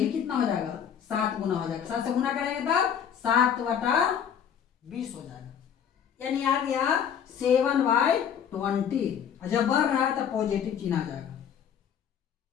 कितना हो जाएगा, 7 गुना हो जाएगा। 7 से गुना करेंगे तब 7/20 हो जाएगा, यानी आ गया 7/20। जब बढ़ रहा है तब पॉजिटिव चिन्ह आ जाएगा।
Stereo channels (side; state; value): right; quieter; 8.3 dB